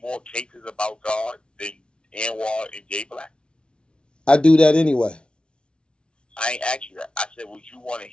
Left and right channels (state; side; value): late; right; 0.057 ms